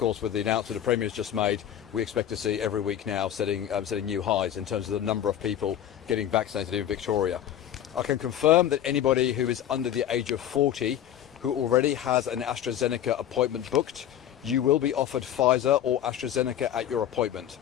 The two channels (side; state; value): right; quieter; 10.5 dB